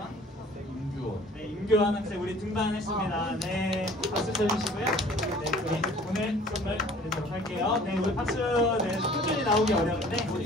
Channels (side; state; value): both; normal; correlation 0.50